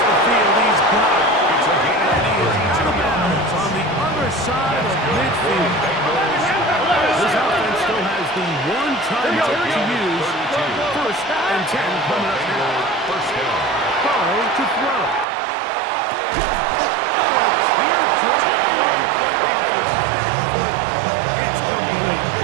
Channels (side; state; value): left; drops out; at 15.2 s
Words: the field, he's got it. And he is out of bounds on the other side of midfield. This offense still has the one timeout to use. First and 10 coming up now. Burrow to throw. It's complete.